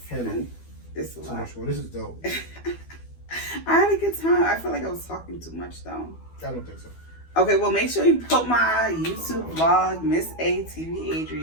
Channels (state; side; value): late; right; 12 ms